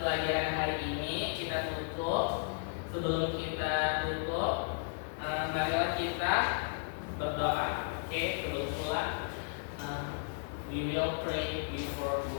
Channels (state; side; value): silent; right; digital silence